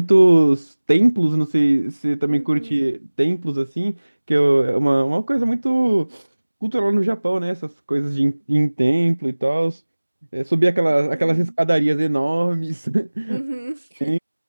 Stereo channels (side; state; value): both; inverted; correlation -1.00